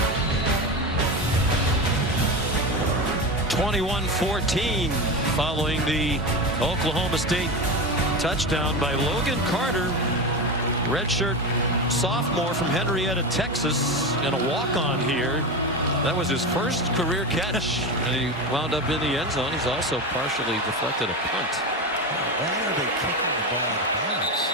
(21-14) following the Oklahoma State touchdown by Logan Carter, redshirt sophomore from Henrietta, Texas, and a walk-on here. That was his first career catch, and he wound up in the end zone. He's also partially deflected a punt. Why are they kicking the ball out of bounds?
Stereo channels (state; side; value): normal; both; correlation 0.20